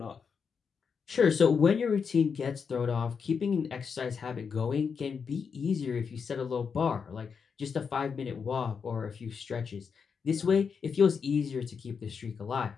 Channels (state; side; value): quieter; right; 6.1 dB